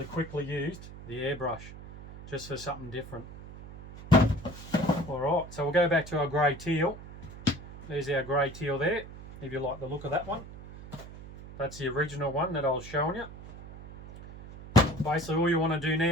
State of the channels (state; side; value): noise; right; hum, 15 dB below the sound